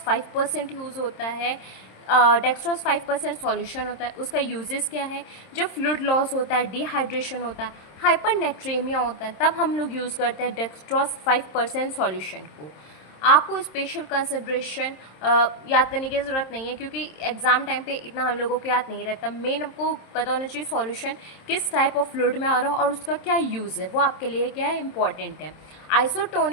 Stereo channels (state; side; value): late; right; 26 ms